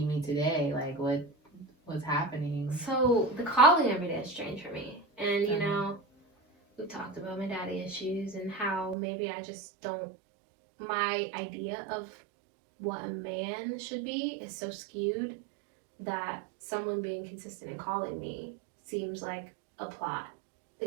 me today? Like, what's happening? So the calling every day is strange for me, and you know, we've talked about my daddy issues and how maybe I just don't. My idea of what a man should be is so skewed that someone being consistent in calling me seems like a plot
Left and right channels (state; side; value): drops out; left; at 9.0 s